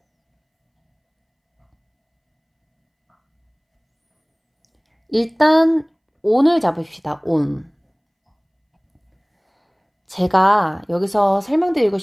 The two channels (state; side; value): identical; both; correlation 1.00